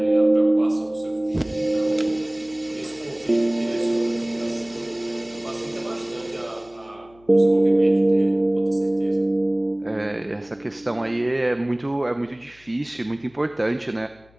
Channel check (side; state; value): left; noise; hum, 29 dB below the sound